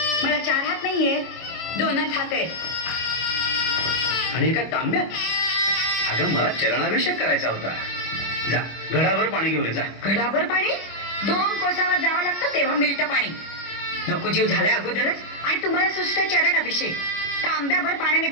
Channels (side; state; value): right; late; 25 ms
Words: मला 4 हात नाहीयेत, 2च हात आहेत. आणि एका तांब्यात. अगं मला चरणाभिषेक करायचा होता. जा घडाभर पाणी घेऊन ये जा. घडाभर पाणी 2 कोसावर जावं लागतं तेव्हा मिळतं पाणी. नको जीव झालाय अगोदरच आणि तुम्हाला सुस्त चरण अभिषेक. तांब्याभर पाण्याने